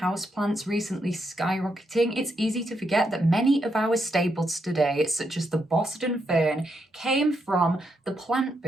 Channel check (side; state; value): both; normal; correlation 0.80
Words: recently skyrocketing, it's easy to forget that many of our staples today, such as the Boston fern, came from the plant